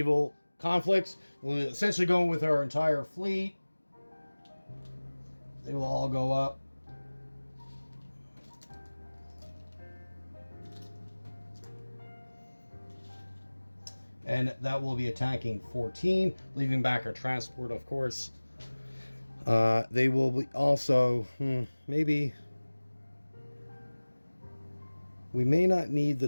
conflicts, we'll essentially go with our entire fleet. They will all go up. And that will be attacking 14, leaving back our transport, of course. They will be also, maybe... We may not need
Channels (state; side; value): inverted; both; correlation -1.00